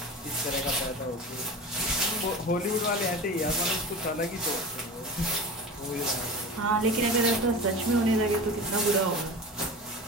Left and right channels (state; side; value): normal; both; correlation 0.31